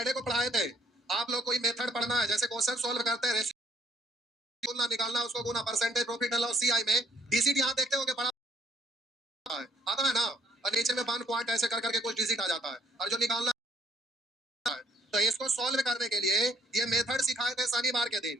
को पढ़ाए थे आप लोग। कोई मेथड पढ़ना है, जैसे क्वेश्चन सॉल्व करते हैं, रेशियो निकालना, उसको गुना, percentage, profit and loss, CI में डिजिट यहाँ देखते हो कि बड़ा है, आता है ना, और नीचे में 1 पॉइंट ऐसे कर करके कुछ डिजिट आ जाता है, और जो निकालना है। तो इसको सॉल्व करने के लिए ये मेथड सिखाए थे शनिवार के दिन।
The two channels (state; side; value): normal; both; correlation 0.64